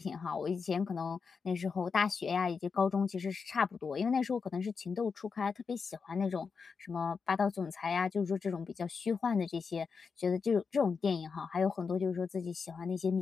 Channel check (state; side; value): quieter; right; 5.4 dB